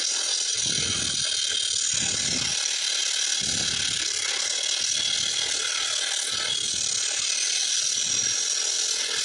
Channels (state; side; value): identical; both; correlation 1.00